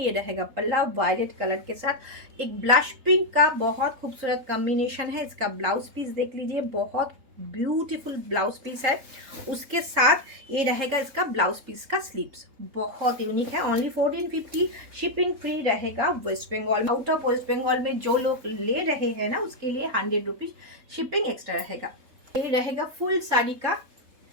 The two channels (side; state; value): left; late; 3.7 ms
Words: रहेगा पल्ला वायलेट कलर के साथ एक ब्लश पिंक का बहुत खूबसूरत कॉम्बिनेशन है। इसका ब्लाउज पीस देख लीजिए, बहुत ब्यूटीफुल ब्लाउज पीस है। उसके साथ ये रहेगा इसका ब्लाउज पीस का स्लीव्स, बहुत यूनिक है। ओनली 1450। शिपिंग फ्री रहेगा वेस्ट बंगाल। आउट ऑफ वेस्ट बंगाल में जो लोग ले रहे हैं ना, उसके लिए 100 रुपीज शिपिंग एक्स्ट्रा रहेगा। ये रहेगा फुल साड़ी का